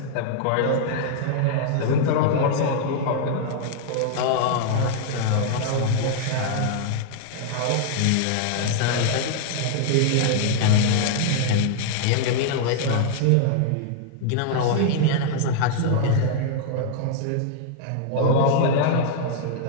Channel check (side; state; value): both; different; correlation -0.01